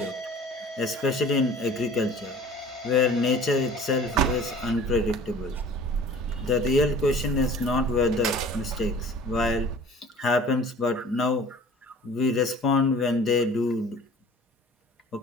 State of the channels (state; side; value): normal; both; correlation 0.46